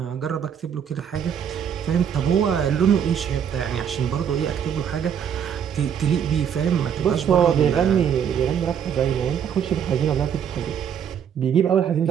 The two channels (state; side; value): quieter; left; 8.3 dB